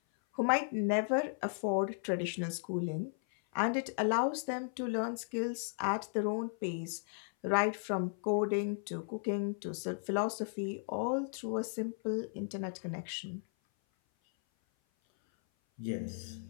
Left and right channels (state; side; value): silent; right; 54 dB below the other